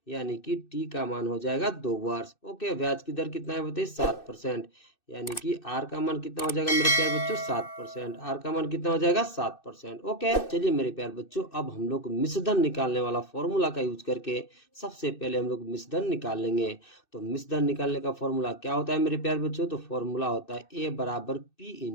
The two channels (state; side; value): late; right; 2.6 ms